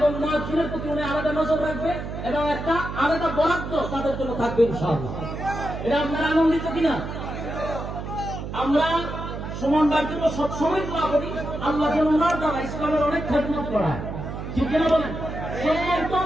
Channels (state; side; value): noise; right; hum, 7 dB below the sound